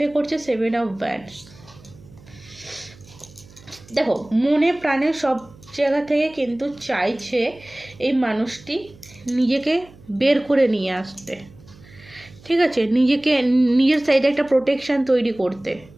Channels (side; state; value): right; noise; hum, 23 dB below the sound